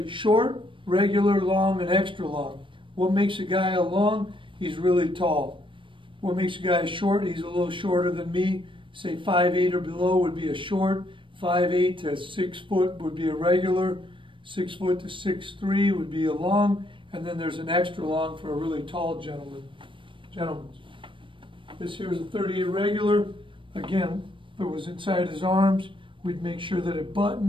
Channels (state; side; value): late; left; 0.25 ms